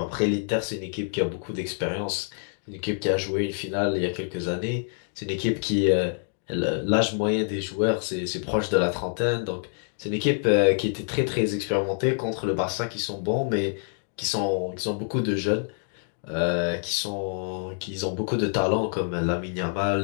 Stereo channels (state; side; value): silent; right; digital silence